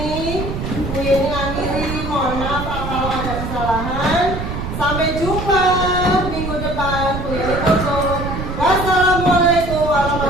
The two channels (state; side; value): noise; right; rumble, 5 dB below the sound